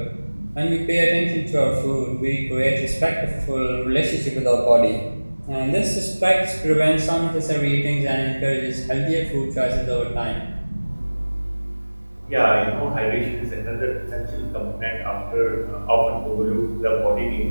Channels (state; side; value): inverted; both; correlation -1.00